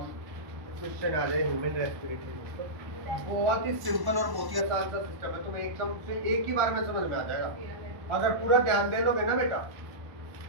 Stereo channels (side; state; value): left; late; 1.1 ms